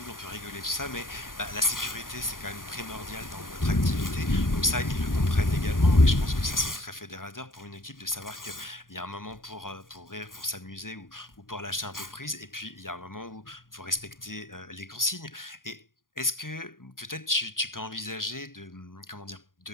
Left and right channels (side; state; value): right; late; 0.90 ms